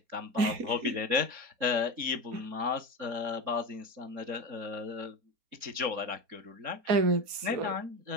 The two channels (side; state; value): left; late; 4.3 ms